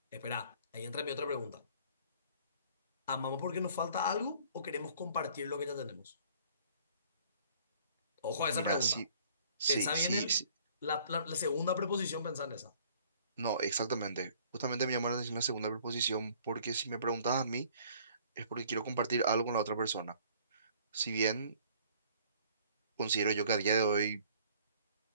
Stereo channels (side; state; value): both; inverted; correlation -0.55